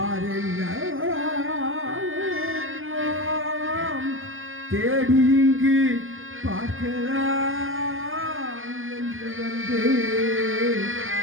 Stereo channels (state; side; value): late; left; 0.59 ms